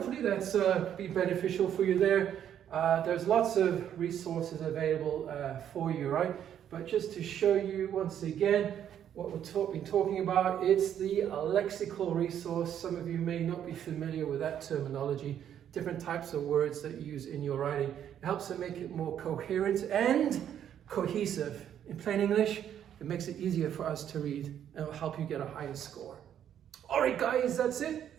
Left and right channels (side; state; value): left; quieter; 9.8 dB